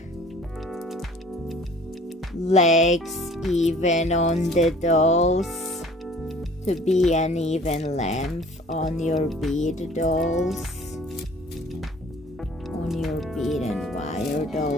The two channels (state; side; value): normal; both; correlation 0.51